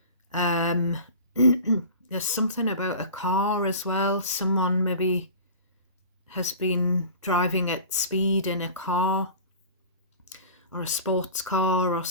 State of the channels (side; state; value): both; inverted; correlation -0.39